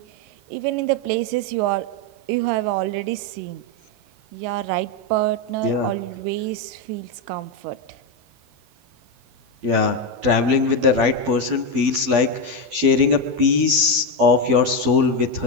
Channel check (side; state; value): left; late; 12 ms